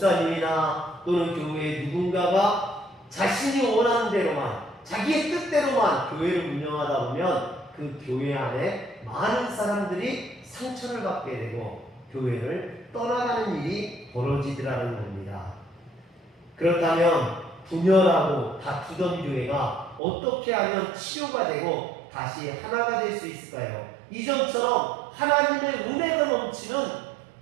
또는 교회의 누군가가 자신이 원하는 대로만, 자기의 뜻대로만 교회를 운영하다 보면 그 교회 안에 많은 사람들이 상처를 받게 되고 교회를 떠나가는 일이 벌어지더라는 겁니다. 그렇다면 분열하고 다투던 교회가 어떻게 하면 치료가 되고 다시 하나가 될 수 있을까요? 이전처럼 하나님의 은혜가 넘치는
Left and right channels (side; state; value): left; drops out; at 20.0 s